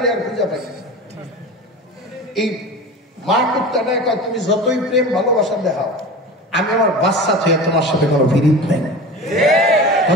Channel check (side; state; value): both; normal; correlation 0.32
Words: আর খুঁজে পাইছিস। এই মা কুত্তাটা কয়, তুমি যতই প্রেম ভালোবাসা দেখাও, আমি আমার বাচ্চা থেকে তোমার সাথে কোনো বিরিদ নেই।